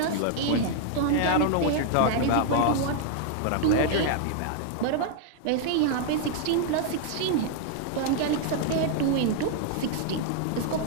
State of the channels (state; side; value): different; both; correlation 0.00